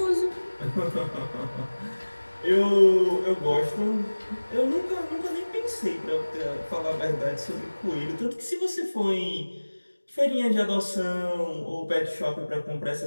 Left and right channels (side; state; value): both; inverted; correlation -1.00